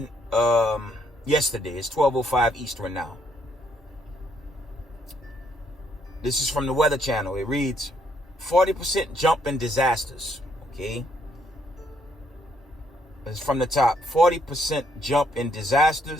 yesterday. It's 12:05 Eastern now. This is from the Weather Channel. It reads, 40% jump in disasters. Okay. It's from the top. 40% jump in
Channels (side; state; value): both; normal; correlation 0.71